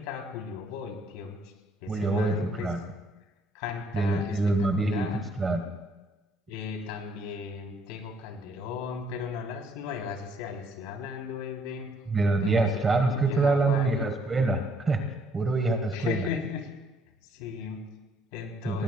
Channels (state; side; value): normal; both; correlation 0.65